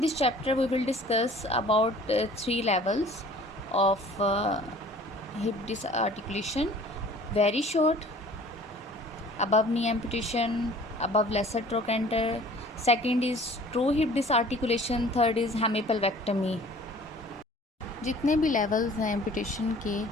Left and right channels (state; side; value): normal; both; correlation 0.49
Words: chapter, we will discuss about 3 levels of hip disarticulation: very short, above knee amputation, above lesser trochanter. Second is true hip disarticulation. Third is hemipelvectomy. जितने भी लेवल्स हैं एम्पुटेशन के,